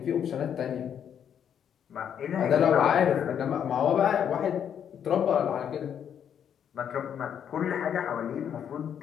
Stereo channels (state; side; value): quieter; right; 8.7 dB